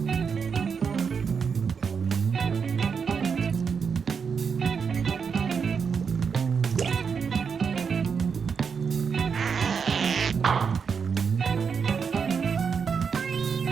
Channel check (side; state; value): left; quieter; 6.1 dB